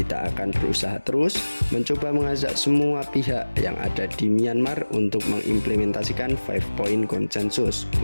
akan berusaha terus mencoba mengajak semua pihak yang ada di Myanmar untuk mengimplementasikan 5 point konsensus,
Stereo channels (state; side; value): inverted; both; correlation -1.00